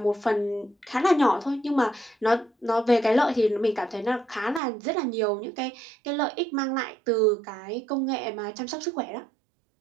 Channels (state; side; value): drops out; left; at 4.6 s